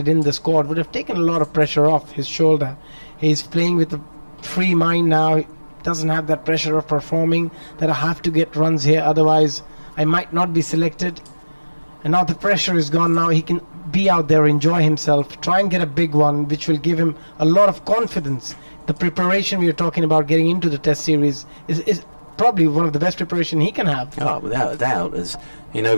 in the squad would have taken a lot of pressure off his shoulder. He's playing with a free mind now. He doesn't have that pressure of performing, that I have to get runs here, otherwise I might not be selected. And now the pressure is gone. Now he can be out there, enjoy himself, try and get a big one, which will give him a lot of confidence. The preparation we are talking about getting into the test series is probably one of the best preparation he can have. Oh, without a doubt. As in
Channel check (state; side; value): inverted; both; correlation -1.00